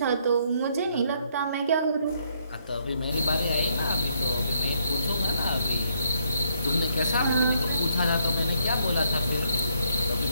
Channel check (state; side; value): inverted; both; correlation -0.72